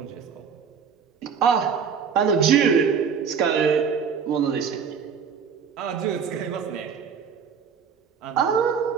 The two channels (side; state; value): left; quieter; 6.6 dB